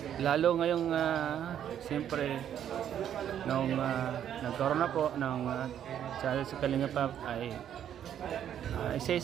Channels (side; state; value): left; quieter; 9.9 dB